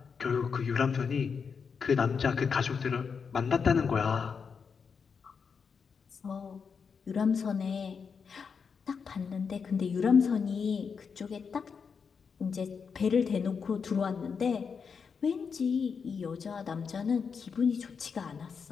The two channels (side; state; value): right; quieter; 5.9 dB